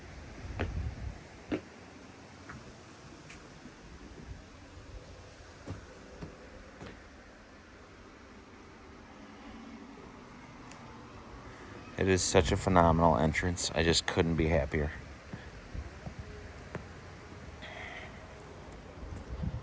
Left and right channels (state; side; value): identical; both; correlation 1.00